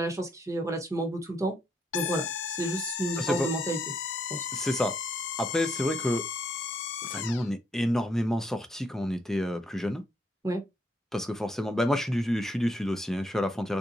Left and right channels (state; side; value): normal; both; correlation 0.74